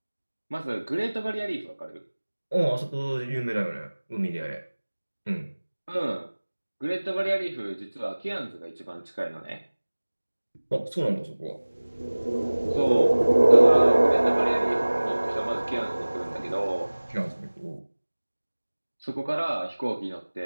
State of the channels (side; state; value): both; inverted; correlation -1.00